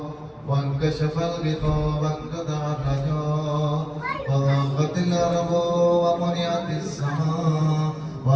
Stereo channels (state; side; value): identical; both; correlation 1.00